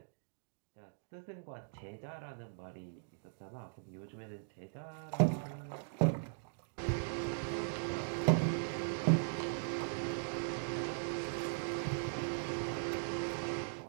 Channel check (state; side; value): silent; left; digital silence